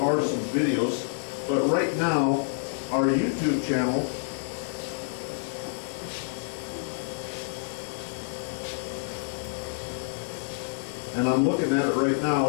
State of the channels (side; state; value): right; silent; 59 dB below the other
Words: some videos, but right now, our YouTube channel and I'm looking at it right now,